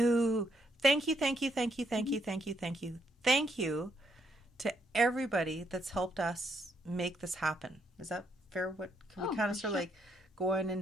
thank you, thank you, thank you, thank you, thank you, thank you, thank you to everybody that's helped us make this happen. Is that fair? What can we Oh, kind of for sort of sure. like going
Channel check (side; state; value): both; normal; correlation 0.75